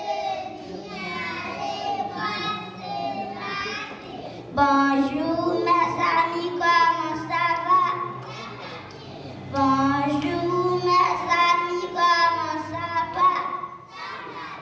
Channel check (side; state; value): both; identical; correlation 1.00